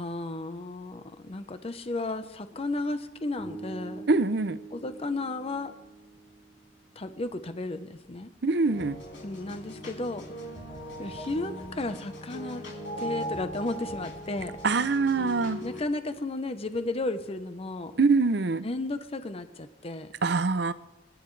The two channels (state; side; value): normal; both; correlation 0.46